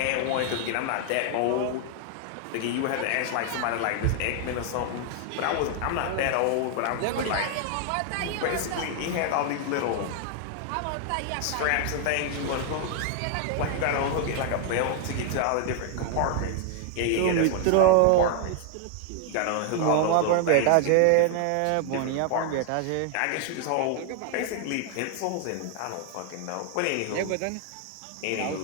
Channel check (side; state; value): both; different; correlation 0.00